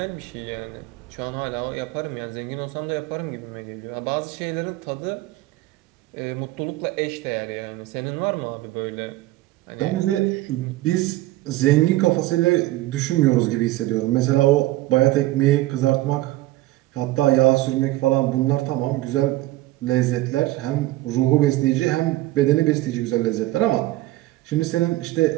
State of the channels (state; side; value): quieter; left; 17.3 dB